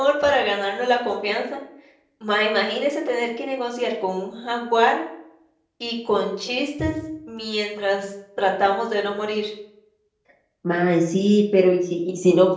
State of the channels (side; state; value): both; identical; correlation 1.00